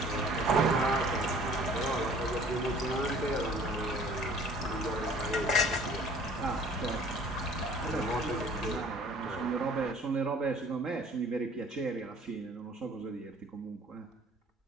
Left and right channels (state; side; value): normal; both; correlation 0.52